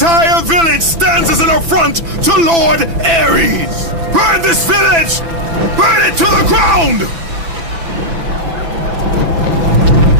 village stands as an affront to Lord Ares! Burn this village! Burn it to the ground!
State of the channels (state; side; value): late; left; 6.0 ms